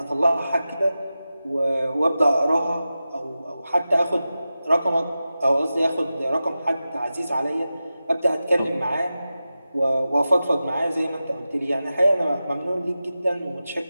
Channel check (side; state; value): both; inverted; correlation -0.93